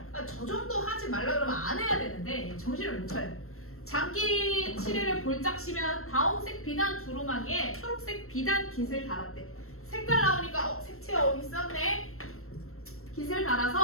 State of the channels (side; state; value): right; late; 0.63 ms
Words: 저 정도 하지 말라 그러면 안 해야 되는데 정신을 못 차려. 장기 칠해를 볼짝 시면 다홍색 비단 두루마기에 초록색 비단 깃을 달았대. 색깔 나오니까 색채 있었네. 깃을